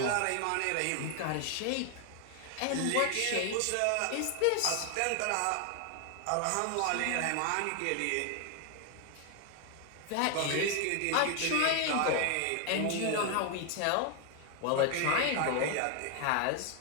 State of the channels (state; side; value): different; both; correlation 0.00